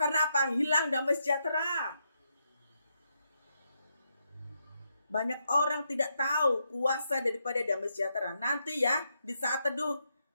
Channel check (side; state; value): both; inverted; correlation -0.81